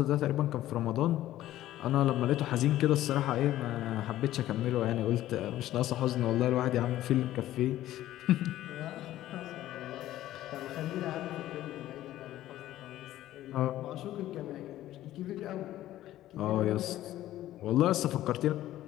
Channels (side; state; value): right; quieter; 14.1 dB